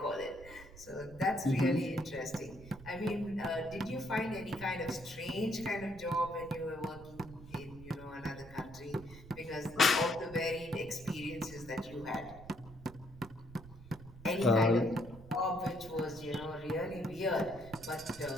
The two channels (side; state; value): right; noise; rumble, 17 dB below the sound